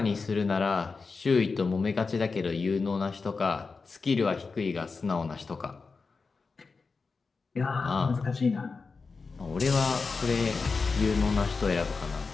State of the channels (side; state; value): right; quieter; 4.5 dB